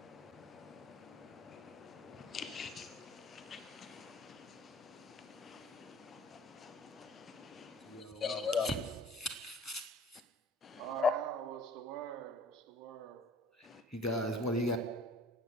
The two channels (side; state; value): both; normal; correlation 0.51